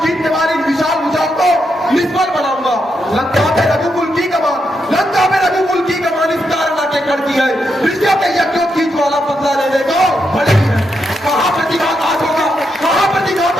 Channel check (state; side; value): normal; both; correlation 0.82